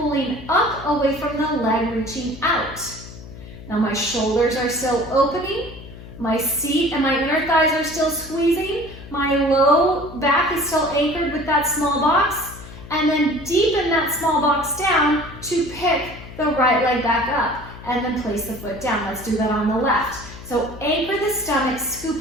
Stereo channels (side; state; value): left; noise; hum, 15 dB below the sound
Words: up away from the leg, reaching out. Now my shoulders are still opening. My seat and my inner thighs are still squeezing. My low back is still anchored with that small box. And then deepen that small box down to pick the right leg back up. And then place the foot down. Let's do that on the left. So anchor the stomach,